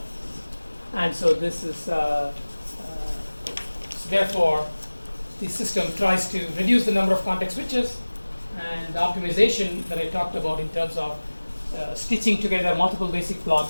and so this is so therefore the system tries to reduce the number of context switches, and the optimization that I talked about in terms of stitching together multiple basic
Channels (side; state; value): both; inverted; correlation -1.00